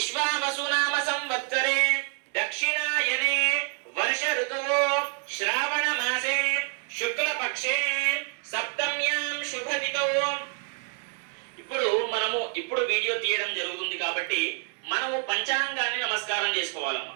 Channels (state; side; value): quieter; left; 38.4 dB